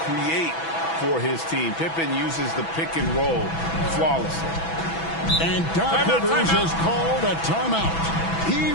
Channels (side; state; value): right; late; 6.1 ms